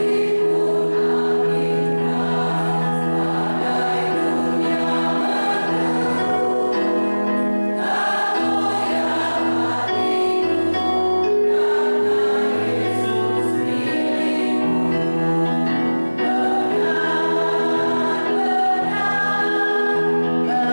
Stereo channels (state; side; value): inverted; both; correlation -1.00